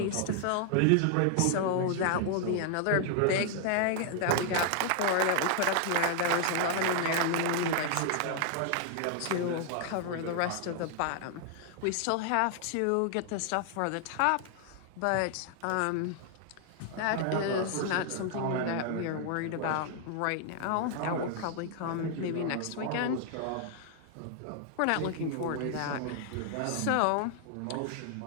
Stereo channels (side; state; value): both; different; correlation 0.00